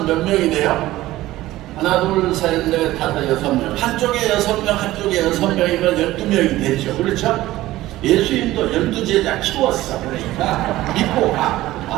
몇 명이 돼요? 하나, 둘, 셋, 넷, 다섯, 6명. 한쪽에 6명, 한쪽에 6명이면 12명이 되죠. 그렇죠? 예수님도 12제자 키웠어. 그러니까 믿고 가.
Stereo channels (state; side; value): quieter; left; 16.4 dB